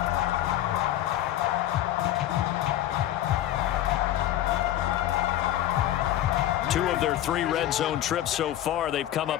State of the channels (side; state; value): right; quieter; 12.9 dB